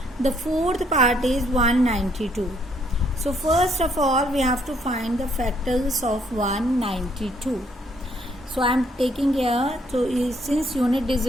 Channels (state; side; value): normal; both; correlation 0.68